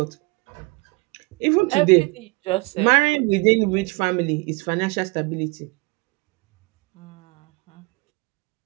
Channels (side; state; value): left; quieter; 27.2 dB